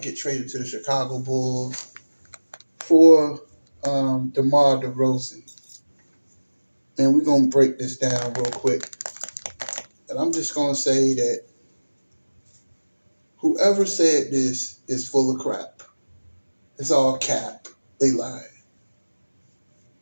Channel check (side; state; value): both; inverted; correlation -1.00